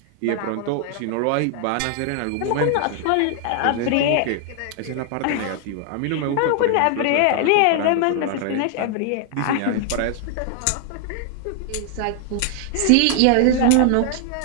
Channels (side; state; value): both; different; correlation 0.00